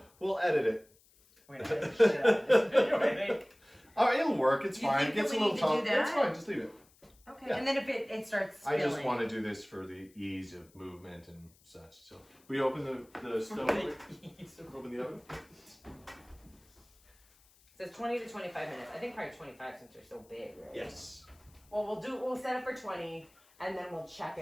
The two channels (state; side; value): noise; left; hiss, 30 dB below the sound